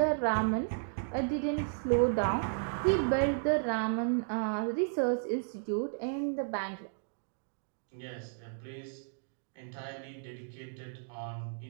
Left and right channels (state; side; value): silent; left; digital silence